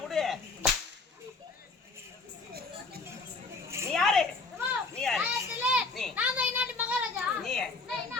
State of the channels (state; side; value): quieter; right; 3.8 dB